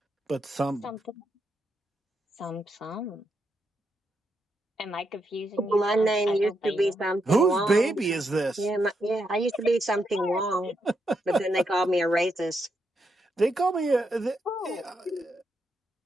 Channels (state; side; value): normal; both; correlation 0.81